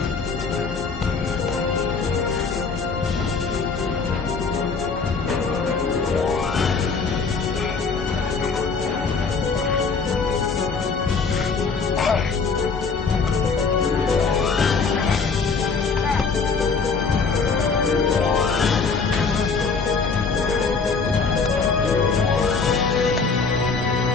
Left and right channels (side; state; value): right; quieter; 4.8 dB